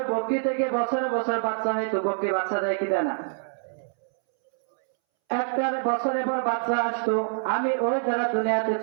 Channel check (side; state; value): left; silent; 61 dB below the other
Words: বকরি থেকে বছরে বছর বাচ্চা হয়তো, বকরি বাচ্চা দেয় কি দেয় না, একটা বছরের পর বাচ্চা আসতো, আমি ওই দ্বারা দুনিয়াতে